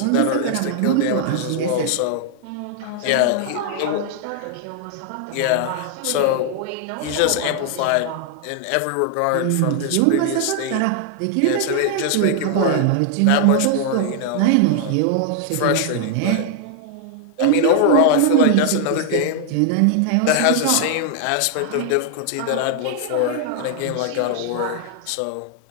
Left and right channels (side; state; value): both; different; correlation 0.00